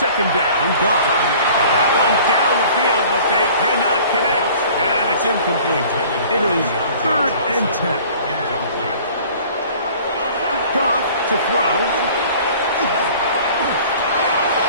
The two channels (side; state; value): both; inverted; correlation -0.48